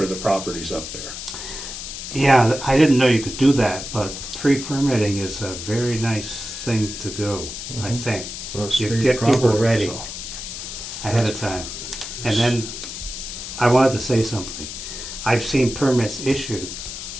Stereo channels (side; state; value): left; noise; hiss, 8 dB below the sound